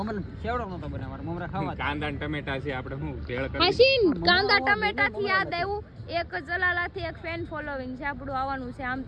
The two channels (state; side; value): identical; both; correlation 1.00